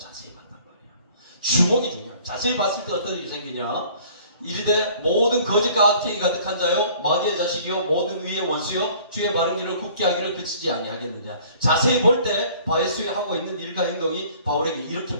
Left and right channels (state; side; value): inverted; both; correlation -0.53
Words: 봤단 말이에요. 주목이 중요해요. 자세히 봤을 때 어떤 일이 생기냐? 이르되 모든 거짓과 악행이 가득한 자요 마귀의 자식이요 모든 의의 원수요 주의 바른 길을 굽게 하기를 그치지 아니하겠느냐. 자세히 볼 때 바에스에 하고 있는 일과 행동이 바울에게 이렇게